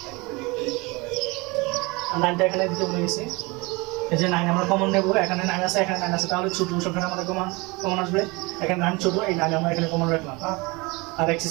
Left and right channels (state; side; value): quieter; left; 25.5 dB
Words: 9টা এখানে দিতে ভুলে গেছি, এই যে 9 আমরা কমন নেব, এখানে 9 আছে, এখানে 9 আছে, তাহলে ছোট সংখ্যাটা আমাদের কমন আসবে, এখানে 9 ছোট, এই 9 আমরা এখানে কমন রাখলাম, আর x